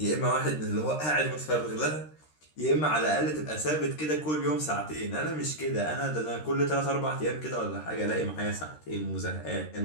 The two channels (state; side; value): late; right; 13 ms